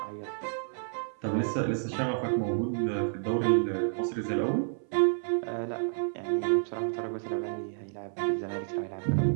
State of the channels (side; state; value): left; silent; 58 dB below the other